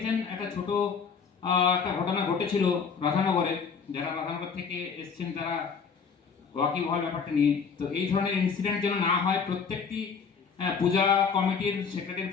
একটা ছোট একটা ঘটনা ঘটেছিল রাধানগরে, যারা রাধানগর থেকে এসছেন তারা ওয়াকিব হওয়ার ব্যাপারটা নিয়ে। তো এই ধরনের ইনসিডেন্ট যেন না হয়, প্রত্যেকটি পূজা কমিটির সেক্রেটারি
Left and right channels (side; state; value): right; quieter; 5.9 dB